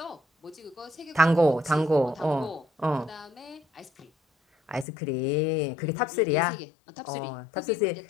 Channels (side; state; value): right; drops out; at 4.9 s